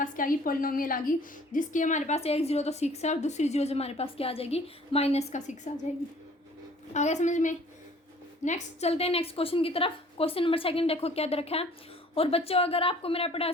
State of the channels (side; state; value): both; normal; correlation 0.53